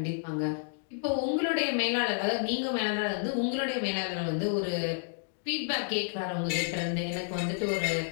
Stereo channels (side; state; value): right; silent; digital silence